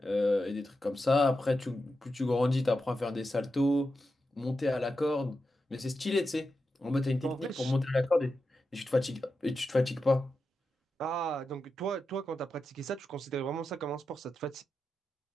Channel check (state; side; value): normal; both; correlation 0.89